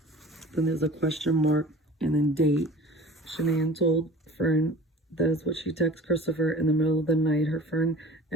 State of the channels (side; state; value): both; normal; correlation 0.42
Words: Then there's a question mark and then date. Shanann told Fern that is what she texted Christopher in the middle of the night. Her friend